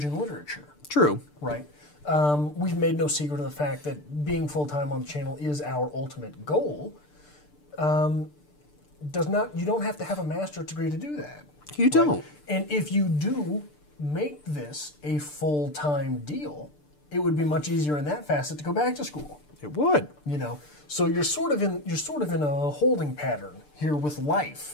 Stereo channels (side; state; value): right; late; 6.8 ms